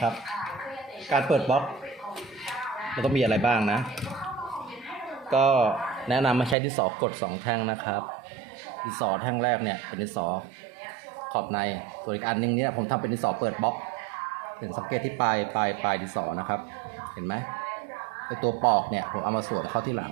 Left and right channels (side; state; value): left; drops out; at 6.6 s